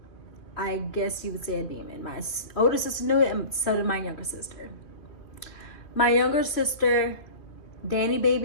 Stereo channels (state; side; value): late; right; 2.4 ms